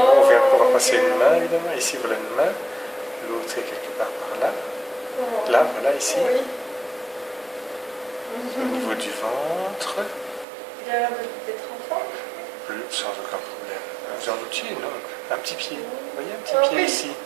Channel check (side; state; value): left; drops out; at 10.5 s